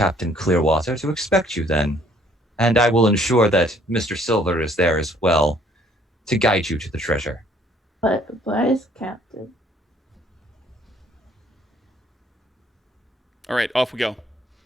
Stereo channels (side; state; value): both; normal; correlation 0.61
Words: Clearwater to expect you then, and I will ensure that Mr. Silver is there as well to guide you to the treasure. But where's Captain? All right, off we go.